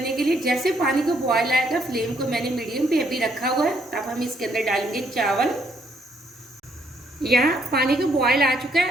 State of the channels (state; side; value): normal; both; correlation 0.69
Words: के लिए। जैसे पानी को बॉयल आएगा, फ्लेम को मैंने मीडियम पे अभी रखा हुआ है। अब हम इसके अंदर डालेंगे चावल। यहाँ पानी को बॉयल आ चुका